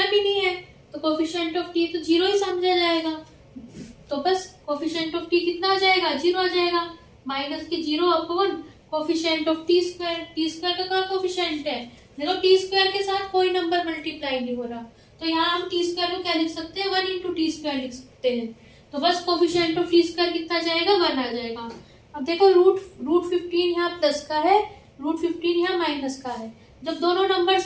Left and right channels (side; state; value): both; identical; correlation 1.00